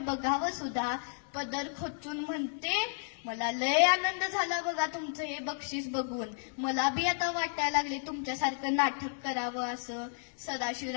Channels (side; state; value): right; silent; digital silence